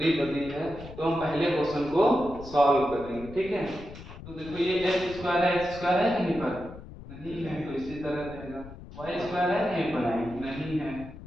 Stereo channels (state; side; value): noise; left; rumble, 15 dB below the sound